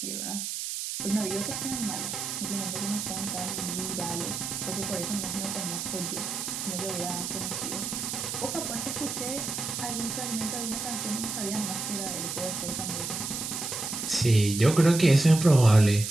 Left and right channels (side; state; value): right; noise; hiss, 4 dB below the sound